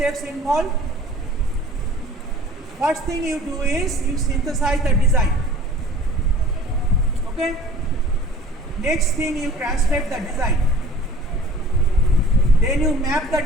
involved? First thing you do is you synthesize the design. Okay. Next thing you translate the design. Then you map the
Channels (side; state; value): both; normal; correlation 0.47